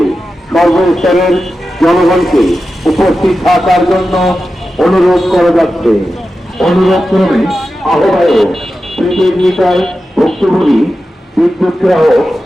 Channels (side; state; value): both; normal; correlation 0.92